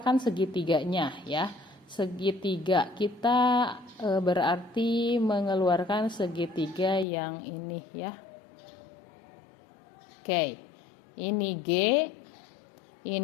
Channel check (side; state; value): right; drops out; at 7.1 s